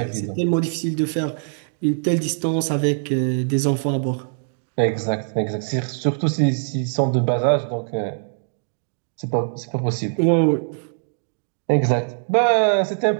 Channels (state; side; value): silent; left; digital silence